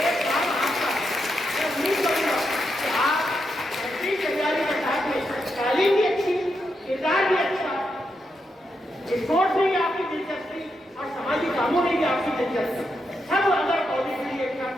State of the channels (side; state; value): both; normal; correlation 0.83